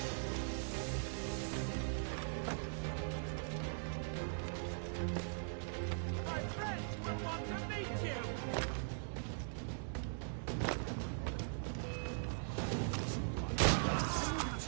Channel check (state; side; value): silent; left; digital silence